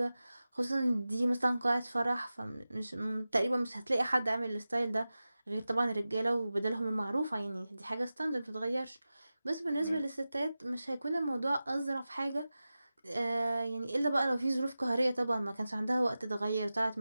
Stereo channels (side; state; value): both; inverted; correlation -0.95